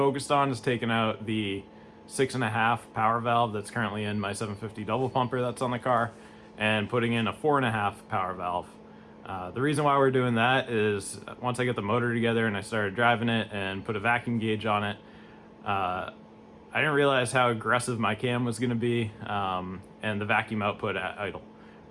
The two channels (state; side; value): identical; both; correlation 1.00